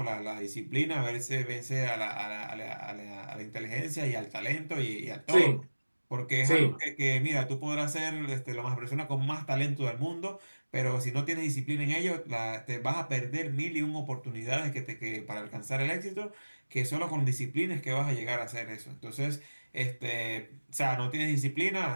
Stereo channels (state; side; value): inverted; both; correlation -1.00